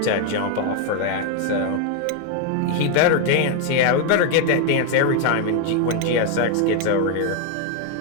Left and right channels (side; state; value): both; different; correlation 0.00